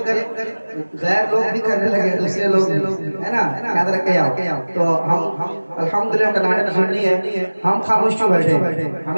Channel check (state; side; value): inverted; both; correlation -1.00